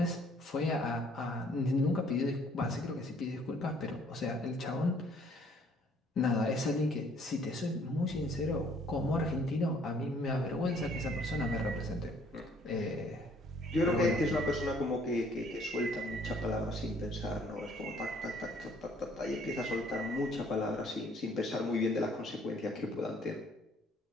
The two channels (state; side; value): normal; both; correlation 0.61